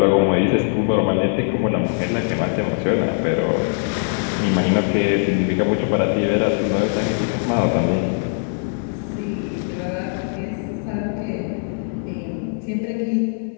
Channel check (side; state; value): right; silent; 65 dB below the other